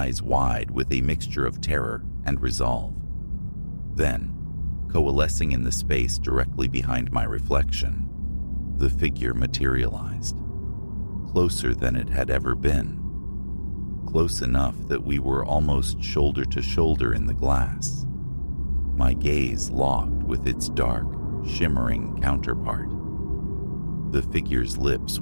wide with a mixture of terror and resolve. Then, coalescing in the space directly behind my reflection, the figure materialized. Closer than it had ever been. Close enough that we were almost shoulder to shoulder in the glass. My gaze locked with its dark, shimmering counterpart. The figure's lips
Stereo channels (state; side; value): inverted; both; correlation -1.00